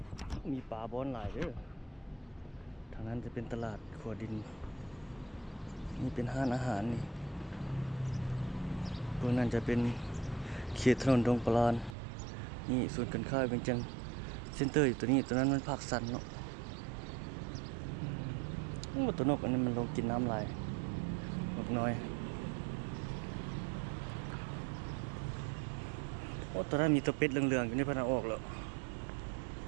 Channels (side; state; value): left; drops out; at 12.0 s